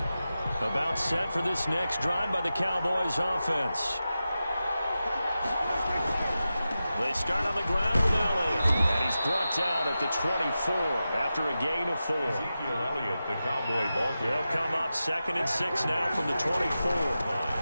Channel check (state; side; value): inverted; both; correlation -0.92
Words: About set for this next drive by the Cowboys offense. They start on the ground with Elliott. And he's brought down at the 24 after a gain of 4. Ezekiel Elliott, the Cowboy ball carrier. They'll come up 2nd and 6 now from the 24.